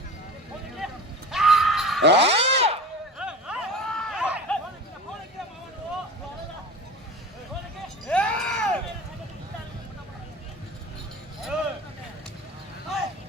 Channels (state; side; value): normal; both; correlation 0.35